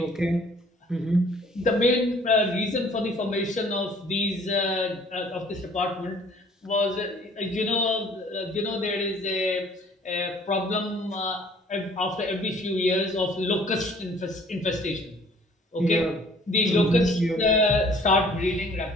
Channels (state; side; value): normal; both; correlation 0.55